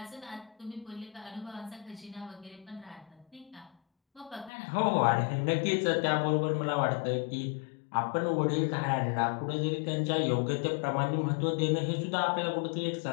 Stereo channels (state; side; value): drops out; right; at 4.5 s